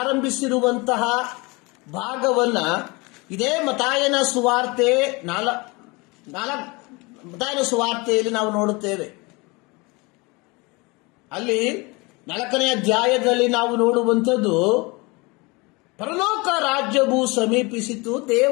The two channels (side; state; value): right; quieter; 26.1 dB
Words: ಭಾಗವನ್ನ ಇದೇ ಮತ್ತಾಯನ ಸುವಾರ್ತೆಯಲ್ಲಿ ನಾವು ನೋಡುತ್ತೇವೆ. ಅಲ್ಲಿ 4ನೇ ಅಧ್ಯಾಯದಲ್ಲಿ ನಾವು ನೋಡುವಂಥದ್ದು, ಪರಲೋಕ ರಾಜ್ಯವು ಸಮೀಪಿಸಿತು,